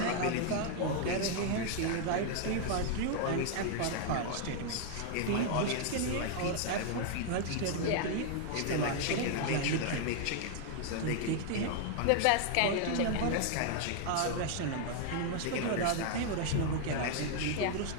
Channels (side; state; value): both; different; correlation 0.00